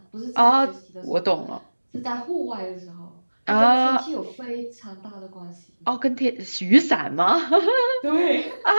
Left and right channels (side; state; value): both; inverted; correlation -1.00